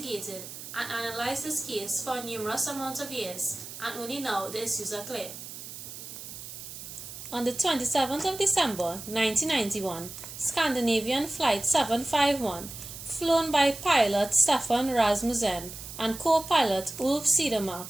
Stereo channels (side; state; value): right; noise; hiss, 11 dB below the sound